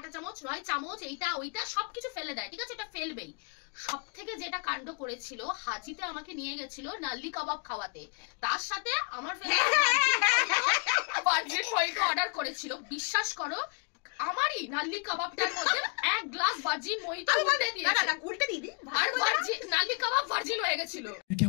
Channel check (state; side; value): quieter; right; 34.1 dB